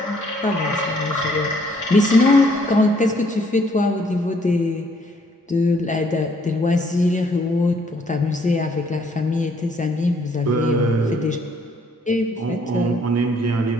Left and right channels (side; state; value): both; normal; correlation 0.65